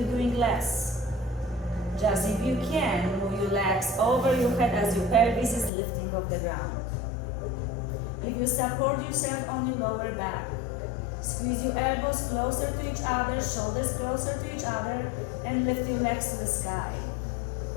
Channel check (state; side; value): drops out; right; at 5.7 s